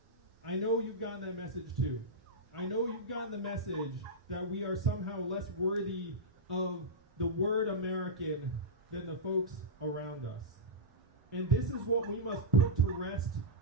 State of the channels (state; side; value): normal; both; correlation -0.11